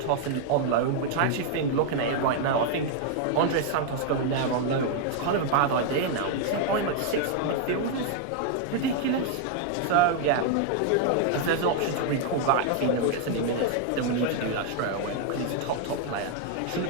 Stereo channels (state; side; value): different; both; correlation 0.00